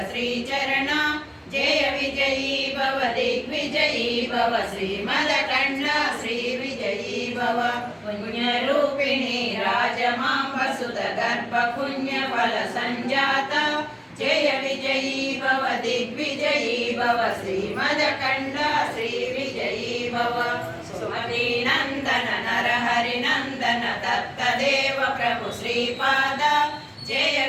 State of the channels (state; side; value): identical; both; correlation 1.00